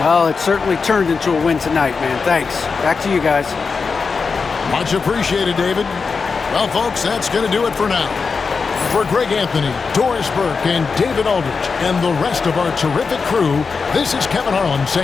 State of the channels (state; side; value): quieter; right; 5.0 dB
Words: Well, it certainly turned into a win tonight, man. Thanks. Back to you guys. Much appreciated, David. Well, folks, that's going to do it for now. For Greg Anthony, Doris Burke, and David Aldridge, and the rest of our terrific crew, this is Kevin Harlan